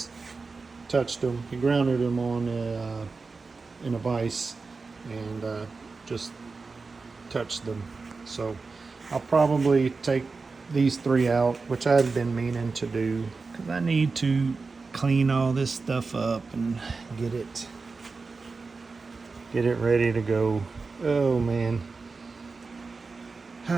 touched them, he grounded them on in a vise and just touched them. So I'll probably take these 3 out, which I've been meaning to do, because I need to clean all this stuff up and get it ready to go. Oh man.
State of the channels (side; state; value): left; quieter; 4.2 dB